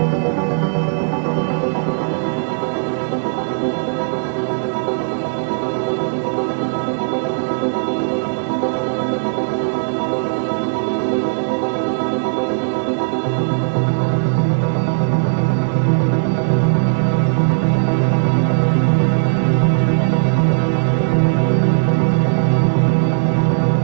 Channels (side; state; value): left; silent; digital silence